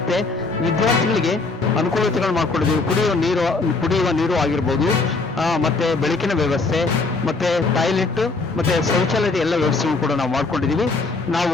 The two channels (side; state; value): right; quieter; 3.8 dB